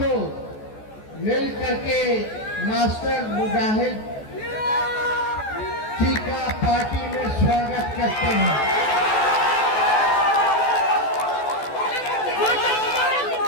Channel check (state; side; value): late; right; 14 ms